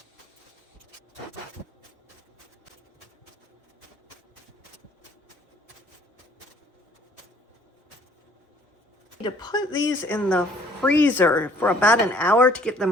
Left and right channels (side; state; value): both; normal; correlation 0.58